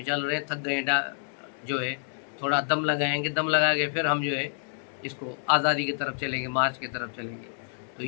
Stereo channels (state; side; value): silent; right; digital silence